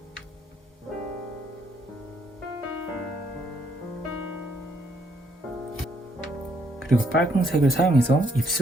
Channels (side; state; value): both; normal; correlation 0.71